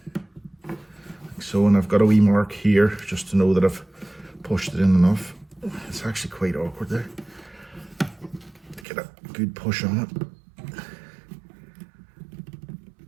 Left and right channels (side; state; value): left; drops out; at 8.8 s